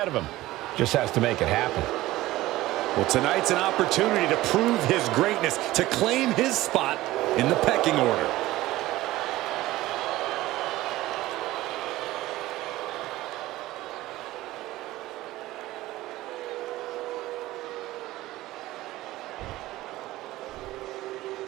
of him. Just has to make it happen. Well, tonight's an opportunity to prove his greatness, to claim his spot in the pecking order.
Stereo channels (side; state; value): left; quieter; 17.0 dB